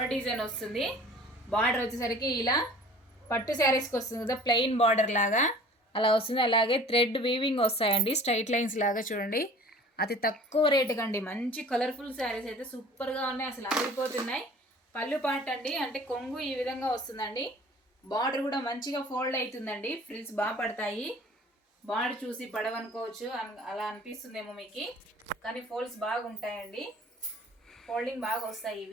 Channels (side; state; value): both; normal; correlation 0.47